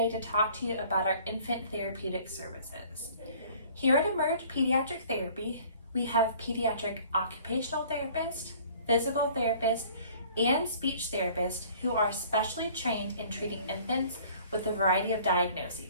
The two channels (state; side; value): inverted; both; correlation -0.52